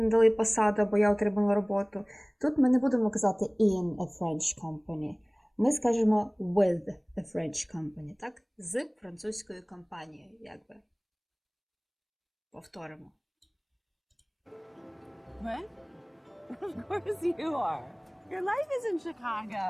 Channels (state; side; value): identical; both; correlation 1.00